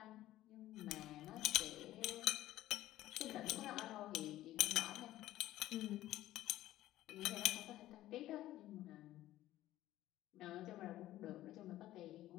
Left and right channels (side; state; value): right; quieter; 14.7 dB